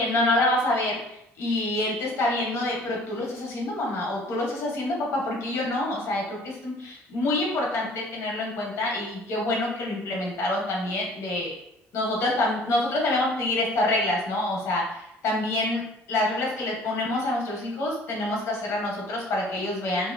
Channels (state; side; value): normal; both; correlation 0.51